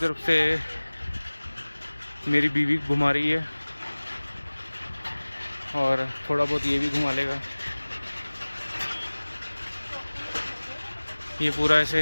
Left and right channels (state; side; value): inverted; both; correlation -1.00